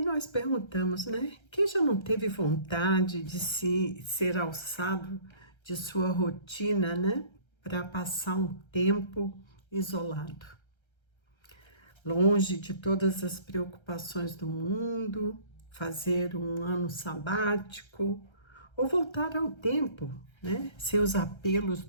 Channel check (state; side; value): late; right; 1.3 ms